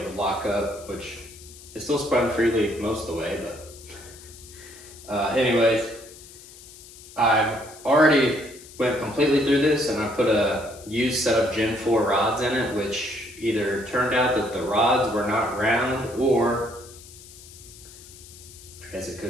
it would lock up, which it still spun freely most of the way, but anyways, I've already went completely through this, and I put a used set of Gen 4 rods in it, which either turned out that the rods were not round, or I guess it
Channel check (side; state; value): left; noise; hiss, 19 dB below the sound